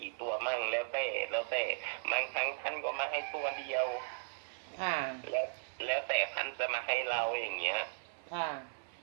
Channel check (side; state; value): left; silent; 53 dB below the other